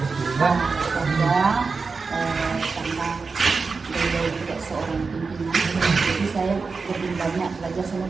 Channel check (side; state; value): left; quieter; 4.6 dB